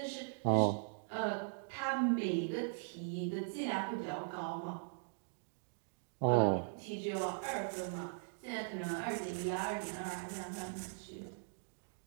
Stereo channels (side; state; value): left; silent; digital silence